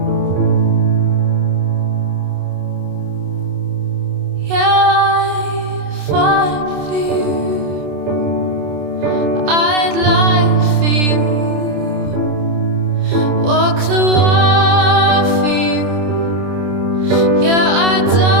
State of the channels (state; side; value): late; left; 27 ms